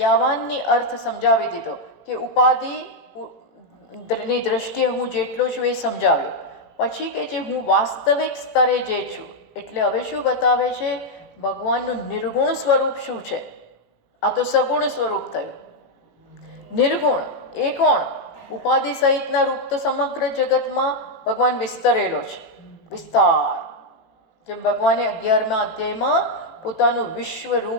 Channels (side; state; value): right; late; 18 ms